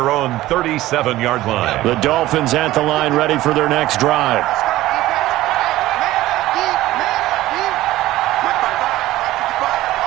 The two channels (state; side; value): quieter; left; 16.1 dB